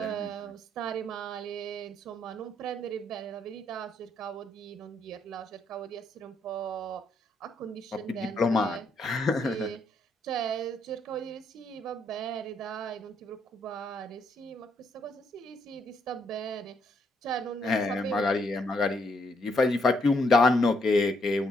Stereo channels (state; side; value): normal; both; correlation 0.74